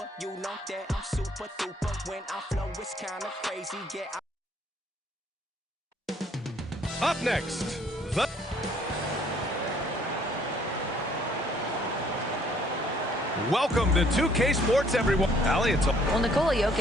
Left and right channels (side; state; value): both; normal; correlation 0.62